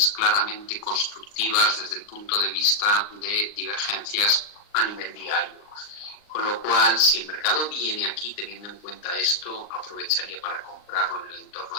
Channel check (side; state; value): right; late; 39 ms